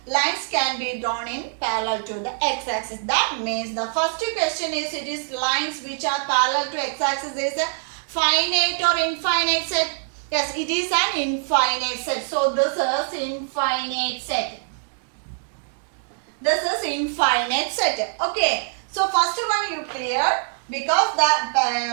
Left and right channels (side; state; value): left; silent; digital silence